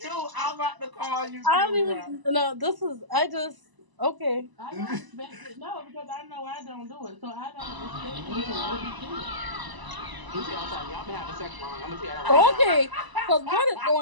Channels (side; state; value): left; late; 1.0 ms